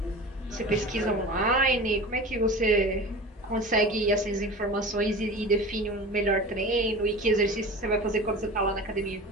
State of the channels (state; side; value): normal; both; correlation 0.34